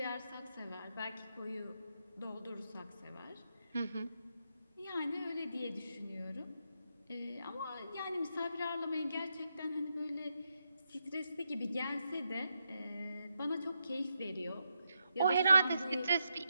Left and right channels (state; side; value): inverted; both; correlation -0.83